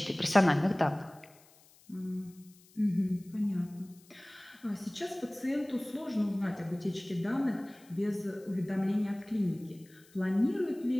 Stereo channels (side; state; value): left; noise; hiss, 27 dB below the sound